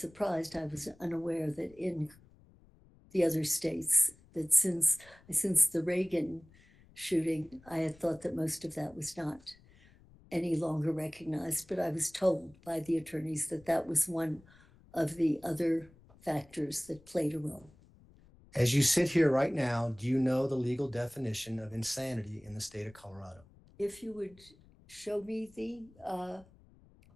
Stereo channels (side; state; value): left; noise; rumble, 27 dB below the sound